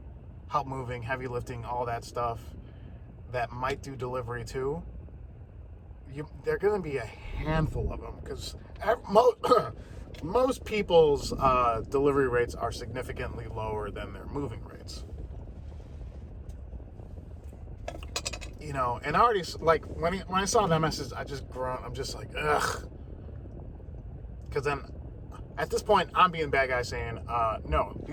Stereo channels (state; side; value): identical; both; correlation 1.00